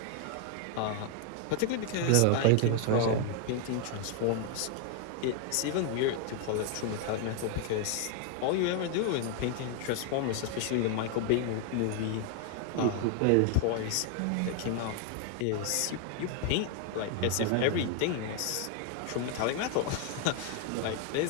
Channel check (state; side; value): different; both; correlation 0.00